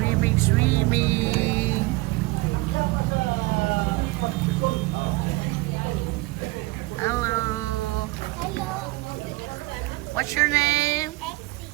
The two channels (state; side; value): quieter; left; 22.5 dB